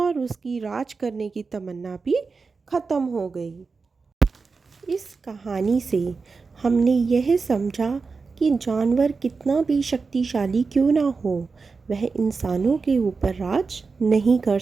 उसकी राज करने की तमन्ना भी खत्म हो गई। इस कहानी से हमने यह समझा कि जानवर कितना भी शक्तिशाली क्यों ना हो, वह इंसानों के ऊपर राज नहीं कर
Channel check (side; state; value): left; quieter; 4.5 dB